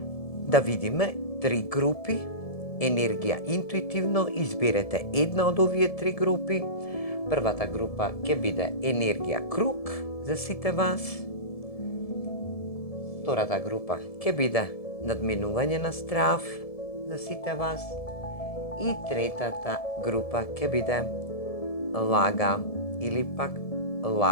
Да видиме три групи. Енергија интуитивно изберете една од овие три групи. Првата група ќе биде енергија круг за сите вас. Втората група ќе биде надминување на страв за сите вас. И третата група ќе биде лага или пак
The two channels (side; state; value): right; late; 1.7 ms